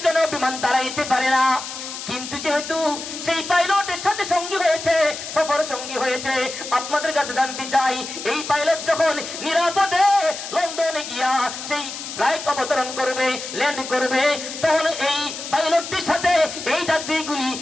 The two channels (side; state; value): left; noise; hiss, 9 dB below the sound